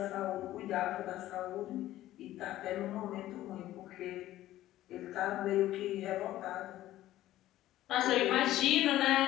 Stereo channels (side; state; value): right; quieter; 14.5 dB